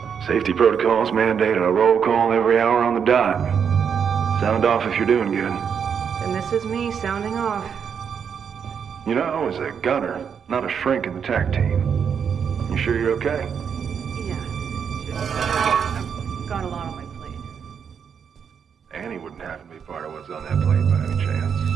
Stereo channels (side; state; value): left; quieter; 7.2 dB